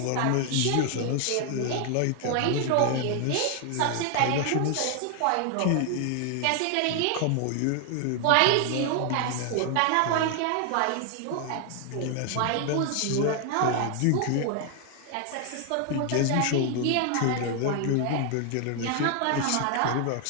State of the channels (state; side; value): different; both; correlation 0.00